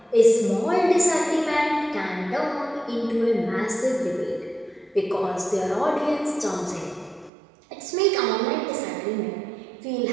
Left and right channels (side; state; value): left; drops out; at 7.3 s